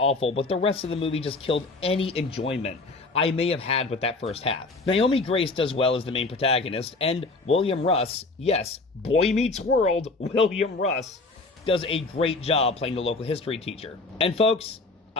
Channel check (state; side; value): quieter; right; 3.5 dB